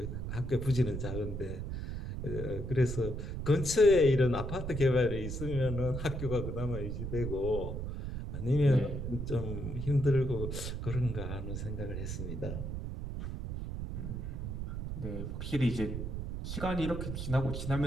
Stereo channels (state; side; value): noise; right; rumble, 5 dB below the sound